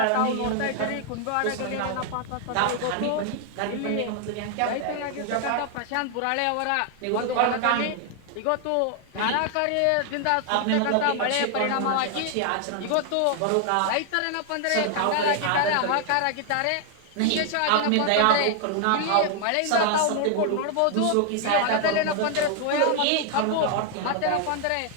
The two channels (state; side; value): different; both; correlation 0.00